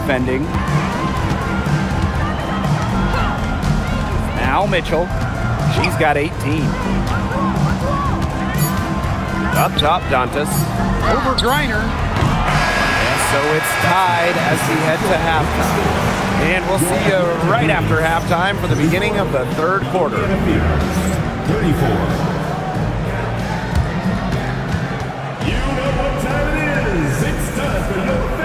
Now Mitchell. She's got 18. Up top, Dantas. Over Griner. And so it's tied as we head to halftime. And we'll see you right after halftime for the beginning of the third quarter. 34. You know what time it is. It's time for your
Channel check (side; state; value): both; identical; correlation 1.00